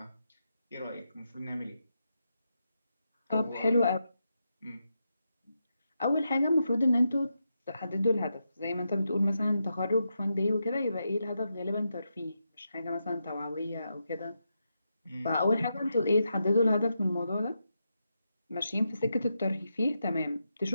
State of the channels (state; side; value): inverted; both; correlation -0.85